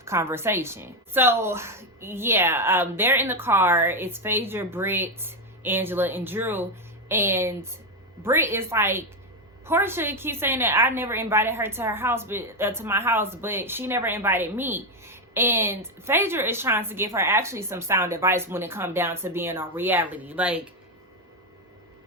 conversation. So yeah, they're in the car. It's Phaedra, Britt, Angela, and Drew. And Britt is like, Portia keeps saying that I never invited her to her house, but to my house, but she never invited me. And Phaedra is trying to give her actually some sound advice when it comes down to being on reality. Like,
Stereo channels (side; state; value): both; normal; correlation 0.07